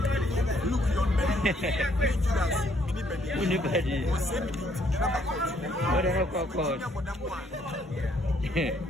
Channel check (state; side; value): normal; both; correlation 0.67